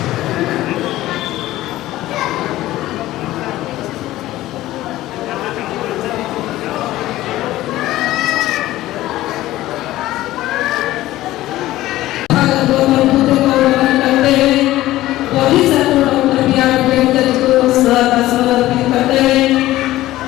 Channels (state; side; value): quieter; right; 15.8 dB